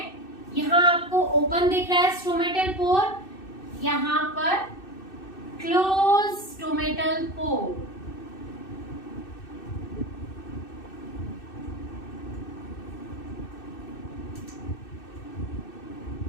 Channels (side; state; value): right; late; 2.6 ms